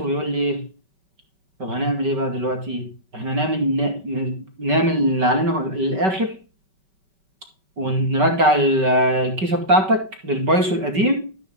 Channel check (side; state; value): left; late; 5.2 ms